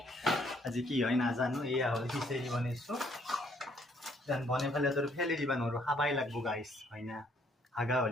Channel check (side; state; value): both; normal; correlation 0.66